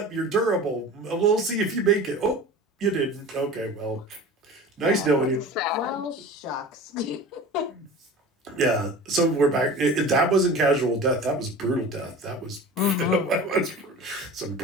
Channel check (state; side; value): normal; both; correlation 0.37